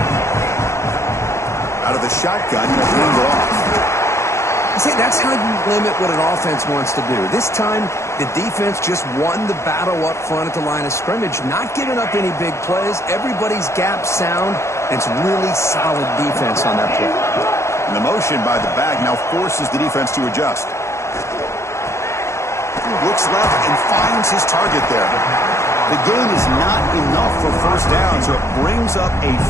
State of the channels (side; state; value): right; late; 0.14 ms